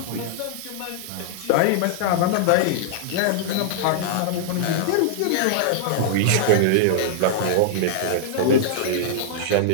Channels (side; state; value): both; different; correlation -0.01